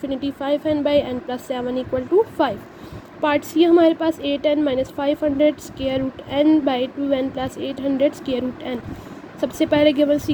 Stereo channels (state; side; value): identical; both; correlation 1.00